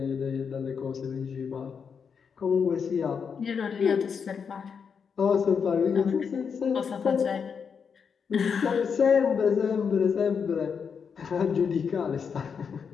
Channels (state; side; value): quieter; right; 6.4 dB